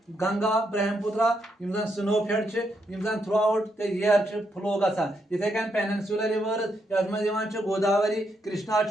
Ganga Brahmaputra snow fed throughout the year flow गसान इथे कन पेनिनसुलर रिवर यथ मज गोदावरी कृष्णा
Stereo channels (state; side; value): normal; both; correlation 0.79